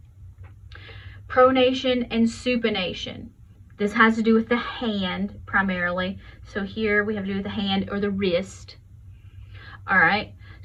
Pronation and supination. This has to do with the hand primarily. So here we have to do with the hand or the wrist. All right.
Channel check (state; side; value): identical; both; correlation 1.00